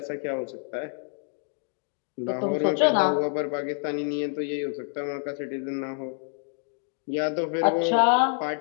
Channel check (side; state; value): right; silent; 60 dB below the other